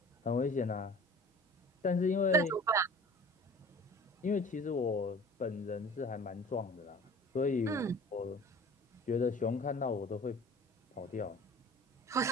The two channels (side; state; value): both; normal; correlation 0.44